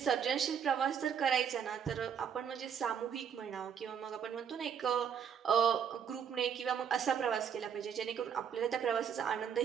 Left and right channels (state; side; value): quieter; left; 7.8 dB